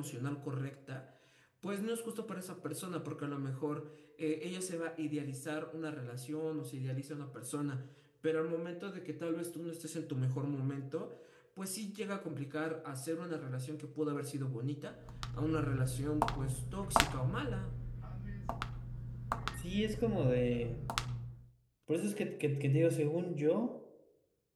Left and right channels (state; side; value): identical; both; correlation 1.00